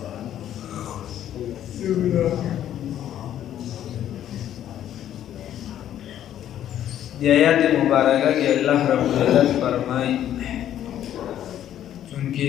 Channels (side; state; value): right; quieter; 11.1 dB